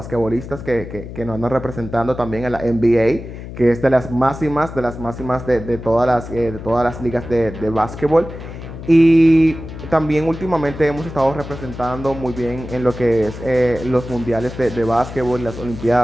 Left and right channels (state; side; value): noise; left; hum, 11 dB below the sound